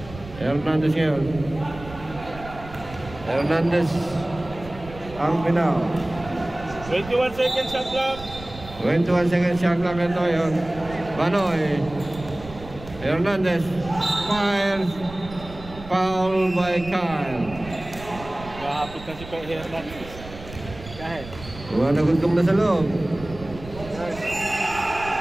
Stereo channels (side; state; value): right; noise; rumble, 15 dB below the sound